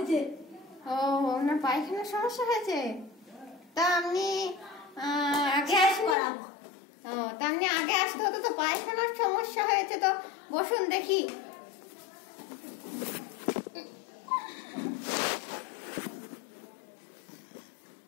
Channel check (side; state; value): right; drops out; at 6.2 s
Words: ও আপনার পায়খানার সমস্যা হয়েছে? তা আপনি আগে করাবো। ও তা আপনি আগে আসতে হতো তো। পায়খানার সমস্যা হয়েছে তো বসুন দেখি।